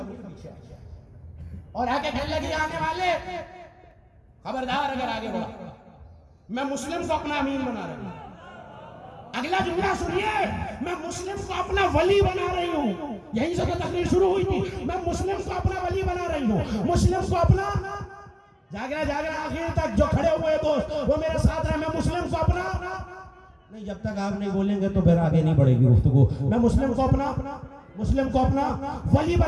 के पीछे और आके कहने लगी आने वाले खबरदार, अगर आगे बढ़ा मैं मुस्लिम को अपना अमीन बना रही हूँ। अगला जुमला सुनिए, मैं मुस्लिम को अपना वली बना रही हूँ। यहीं से तो तकरीर शुरू हुई थी। मैं मुस्लिम को अपना वली बना रही हूँ, मुस्लिम को अपना, जागना जागना आखिर तक जो खड़े हुए दोस्त वो मेरे साथ रहे। मैं मुस्लिम को अपना नहीं, जब तक आप नहीं बोलेंगे तो फिर आगे नहीं बढ़ेगी गुफ्तगू। मैं मुस्लिम को अपना वली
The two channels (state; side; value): identical; both; correlation 1.00